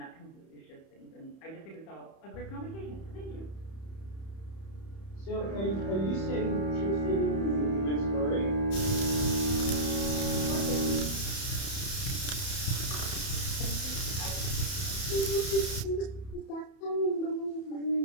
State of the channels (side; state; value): right; late; 31 ms